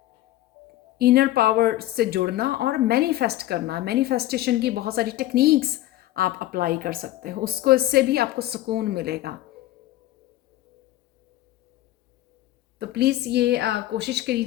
इनर पावर से जुड़ना और मैनिफेस्ट करना। मैनिफेस्टेशन की बहुत सारी टेक्निक्स आप अप्लाई कर सकते हो, उसको इससे भी आपको सुकून मिलेगा। तो प्लीज़ ये कोशिश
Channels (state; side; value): quieter; right; 15.2 dB